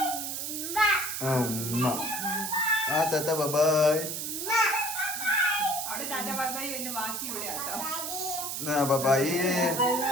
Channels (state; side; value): noise; right; hiss, 4 dB below the sound